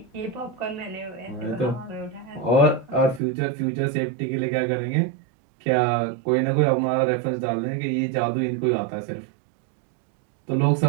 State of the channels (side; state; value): left; drops out; at 3.2 s